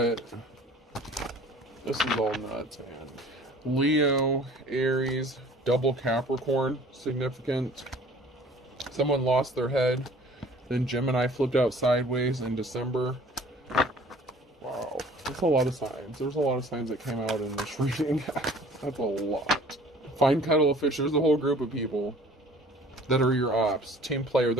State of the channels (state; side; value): normal; both; correlation 0.50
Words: This is all nuts, man. Leo, Aries, double Capricorn, significant. Someone lost their head. Then Gemini flipped out sideways in December. Wow. That's a lot of signs. There's a lot of signs that came out in this reading. That's a lot. Find Kettle of Fish. There's a whole group of people that are your ops. Team player.